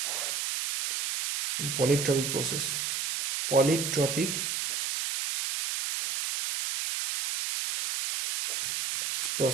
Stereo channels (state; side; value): noise; right; hiss, 2 dB below the sound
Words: in polytropic process, polytropic